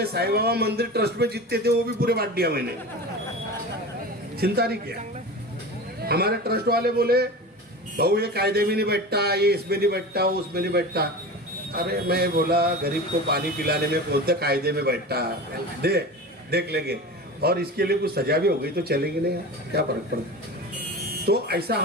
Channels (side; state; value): both; normal; correlation 0.31